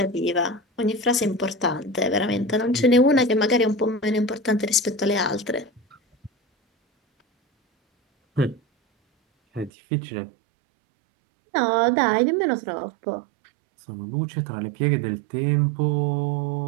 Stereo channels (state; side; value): drops out; left; at 9.7 s